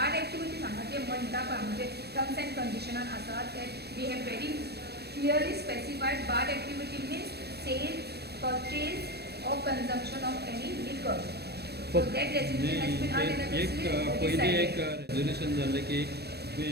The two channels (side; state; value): left; late; 0.47 ms